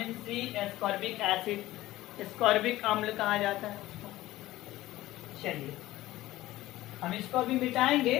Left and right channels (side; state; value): right; quieter; 16.4 dB